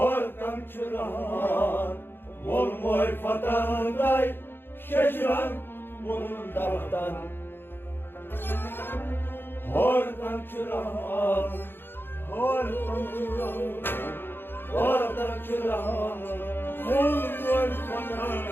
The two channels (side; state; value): right; late; 0.10 ms